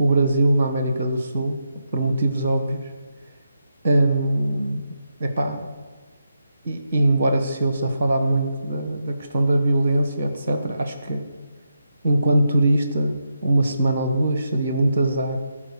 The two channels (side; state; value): both; inverted; correlation -0.84